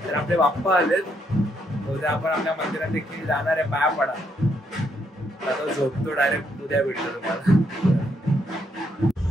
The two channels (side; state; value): both; normal; correlation 0.75